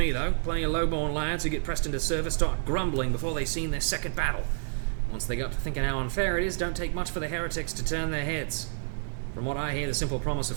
though. Plenty of low-born lads who get pressed into service start grumbling before they've seen their second battle. Once they got to thinking how unfair it is, don't take much for the heretics to turn their heads. From what I hear, the simple promise of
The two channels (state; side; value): silent; left; 59 dB below the other